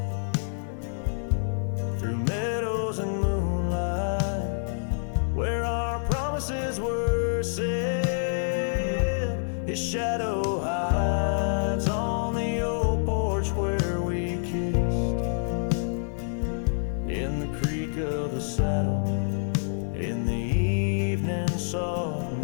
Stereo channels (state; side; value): silent; right; 60 dB below the other